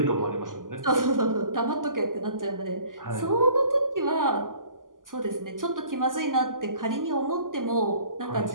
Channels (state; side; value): late; left; 0.90 ms